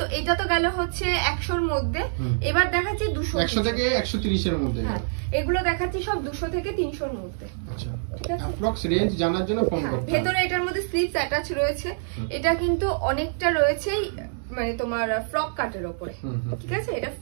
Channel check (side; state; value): left; silent; digital silence